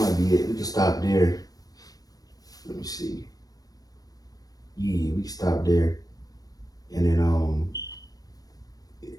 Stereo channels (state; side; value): late; right; 0.18 ms